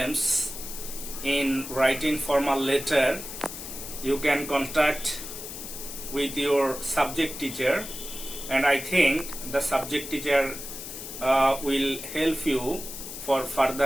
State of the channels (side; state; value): left; noise; hiss, 9 dB below the sound